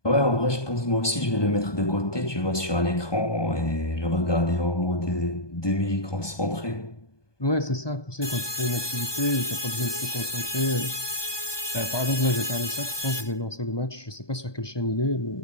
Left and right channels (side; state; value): right; late; 1.2 ms